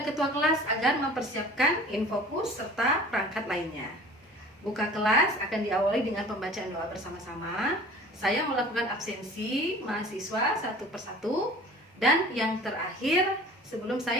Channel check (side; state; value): both; normal; correlation 0.44